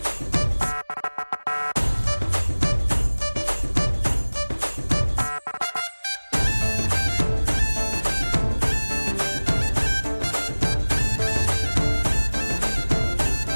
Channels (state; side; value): inverted; both; correlation -1.00